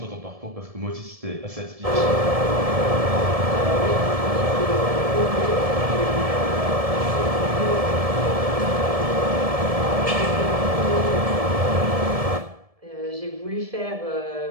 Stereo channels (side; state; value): left; late; 1.7 ms